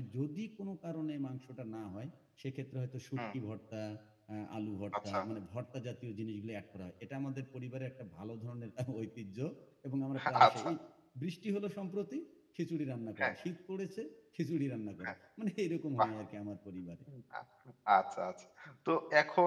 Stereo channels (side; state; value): both; identical; correlation 1.00